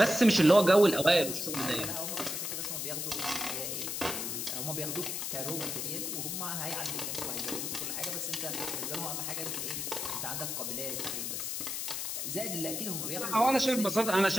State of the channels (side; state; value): left; noise; hiss, 3 dB below the sound